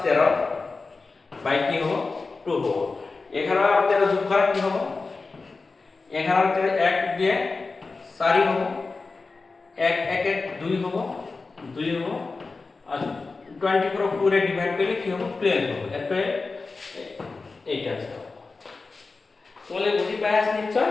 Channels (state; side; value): quieter; right; 4.0 dB